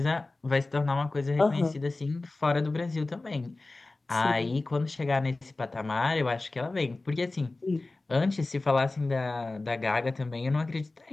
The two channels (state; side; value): quieter; right; 3.2 dB